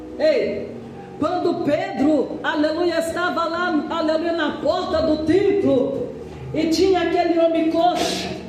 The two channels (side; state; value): both; identical; correlation 1.00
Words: Ei, quando Pedro, aleluia, estava lá, aleluia, na porta do templo, e tinha aquele homem coxo,